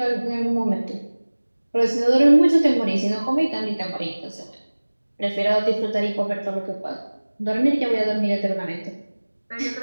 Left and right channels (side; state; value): both; inverted; correlation -1.00